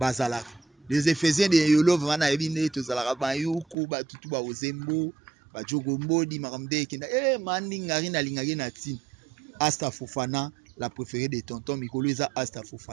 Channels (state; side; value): drops out; left; at 3.8 s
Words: Les Éphésiens de Yolov wana ebine tozalaka ba yuku ba tutu ba ozembo, ba jogombo di makamde kinda. Mandi ngari na lingaki na tin. Asta Fofana, la préférée de tonton Mikolo eza Asta